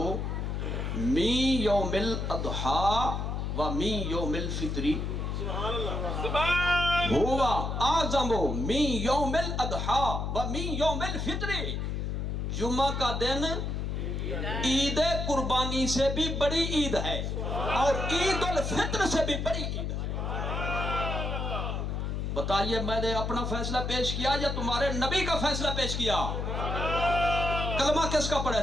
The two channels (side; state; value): left; noise; hum, 2 dB below the sound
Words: من یوم الاضحیٰ و من یوم الفطری. ہوا اعظم من یوم الاضحیٰ و من یوم الفطری. جمعہ کا دن عید قربانی سے بھی بڑی عید ہے اور عید الفطر سے بھی بڑی عید ہے. بتائیے میں نے اپنا فیصلہ پیش کیا یا تمہارے نبی کا فیصلہ پیش کیا؟ کلمہ کس کا پڑھا